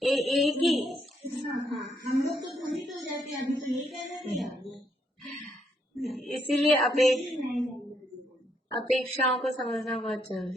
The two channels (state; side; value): normal; both; correlation 0.74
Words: एक ही। हाँ, हम लोग तो भ्रमित हो जाते हैं, अभी तो ये कह रहे थे। इसीलिए अपेक्षाओं को समझना बहुत